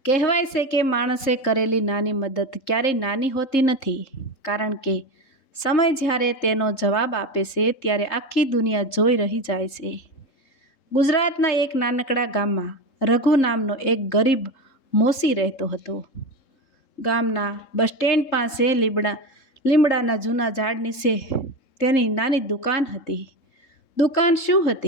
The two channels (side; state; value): right; late; 3.7 ms